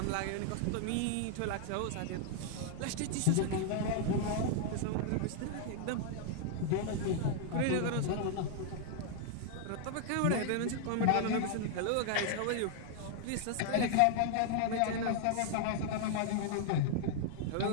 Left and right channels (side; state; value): both; different; correlation 0.00